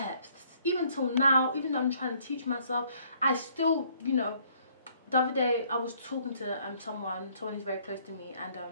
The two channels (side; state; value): both; inverted; correlation -0.63